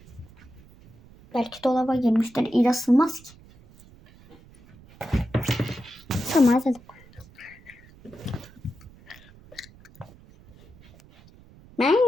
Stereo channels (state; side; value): noise; right; rumble, 24 dB below the sound